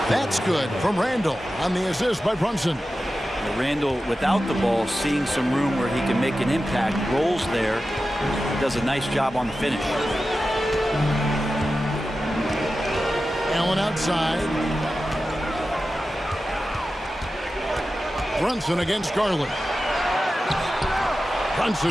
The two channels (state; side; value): normal; both; correlation 0.93